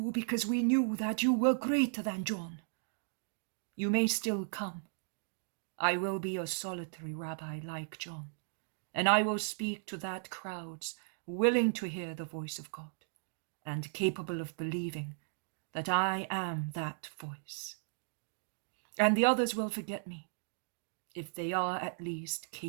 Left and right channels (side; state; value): left; silent; digital silence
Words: because we knew that you were greater than John. You may still come. I will be a solitary rabbi like John, and I will speak to that crowds willing to hear the voice of God and capable of believing that I am that voice. And the others will forget me, if they are at least